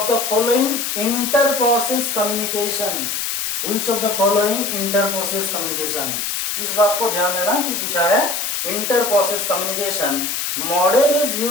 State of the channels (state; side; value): noise; left; hiss, 2 dB below the sound